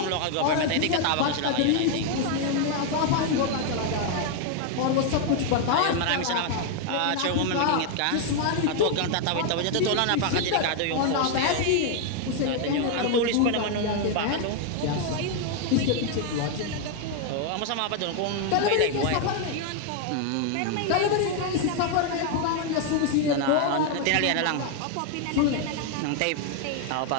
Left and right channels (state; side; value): different; both; correlation 0.00